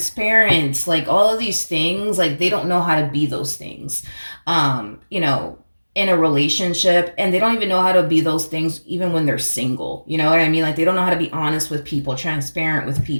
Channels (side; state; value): both; inverted; correlation -1.00